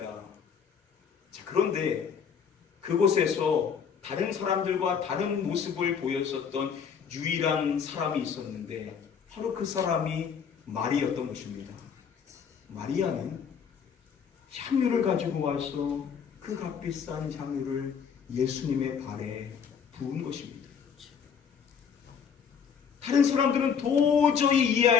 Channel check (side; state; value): right; quieter; 7.0 dB